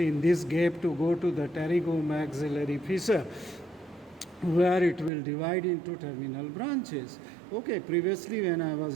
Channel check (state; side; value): drops out; left; at 5.1 s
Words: in this gap, to go to the pterygomaxillary fissure, where it will divide into terminal branches. Okay, previously when I